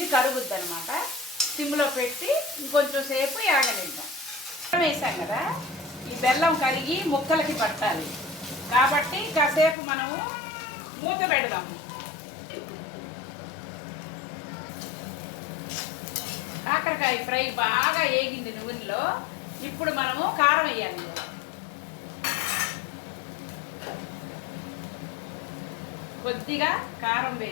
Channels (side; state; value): right; drops out; at 9.8 s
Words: కరుగుద్ది అనమాట. సిమ్లో పెట్టి ఇంకొంచెం సేపు యాగనిద్దాం. బెల్లం వేసాం కదా, ఈ బెల్లం కరిగి ముక్కలకి పట్టాలి. కాబట్టి కాసేపు మనము మూత పెడదాము. కాకరకాయ ఫ్రై బాగా వేగింది నూనెలో. ఇప్పుడు మనము కారం వేయాలి. కొద్దిగా కారం